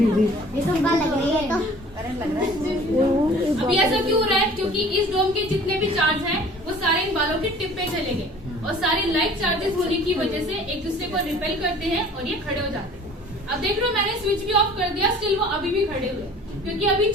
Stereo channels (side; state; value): both; normal; correlation 0.48